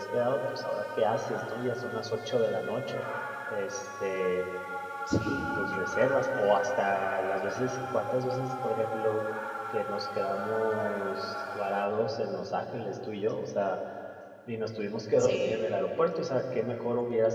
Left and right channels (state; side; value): identical; both; correlation 1.00